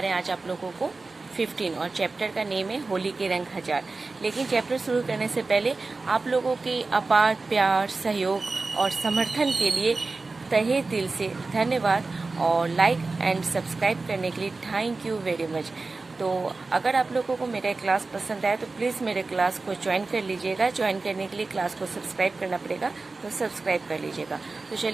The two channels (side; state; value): left; quieter; 3.7 dB